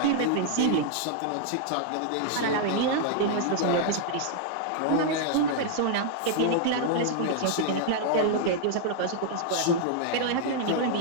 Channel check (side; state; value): both; different; correlation -0.01